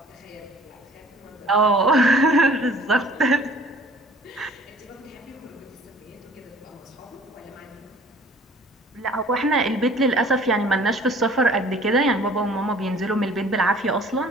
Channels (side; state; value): both; normal; correlation 0.51